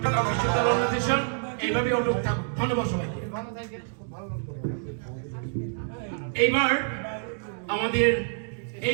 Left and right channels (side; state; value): left; silent; 60 dB below the other